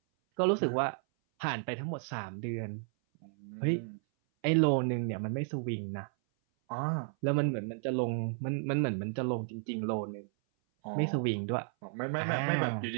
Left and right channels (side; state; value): left; silent; 56 dB below the other